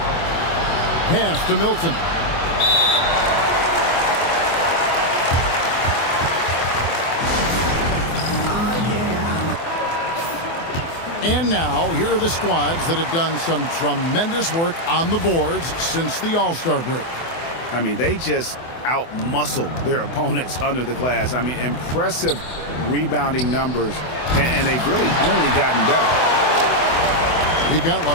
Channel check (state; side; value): late; right; 24 ms